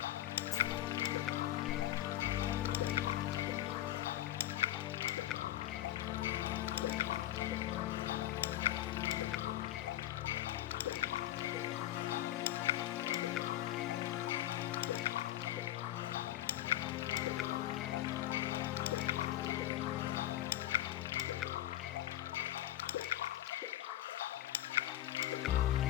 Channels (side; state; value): right; quieter; 14.0 dB